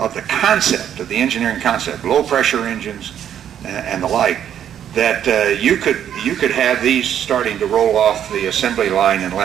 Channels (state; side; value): quieter; left; 9.8 dB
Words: the concept, of the engineering concept, low pressure engines and the like, that you could have these starting to roll off the assembly line in